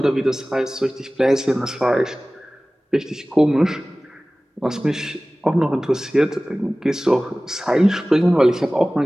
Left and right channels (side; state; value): both; normal; correlation 0.98